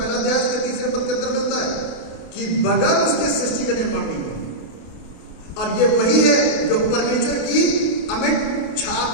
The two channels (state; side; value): late; right; 28 ms